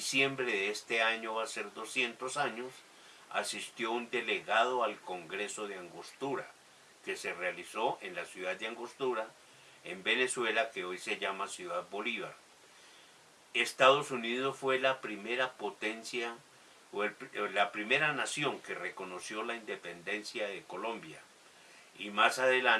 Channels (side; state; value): both; identical; correlation 1.00